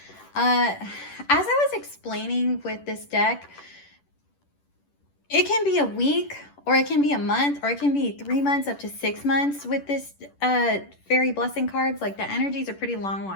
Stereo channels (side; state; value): right; late; 10 ms